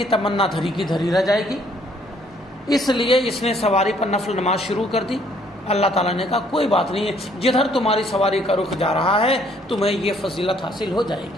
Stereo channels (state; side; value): normal; both; correlation 0.64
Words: تمنا دھری کی دھری رہ جائے گی، اس لیے اس نے سواری پر نفل نماز شروع کر دی۔ اللہ تعالیٰ نے کہا کوئی بات نہیں ہے، جدھر تمہاری سواری کا رخ جا رہا ہے تمہیں یہ فضیلت حاصل ہو جائے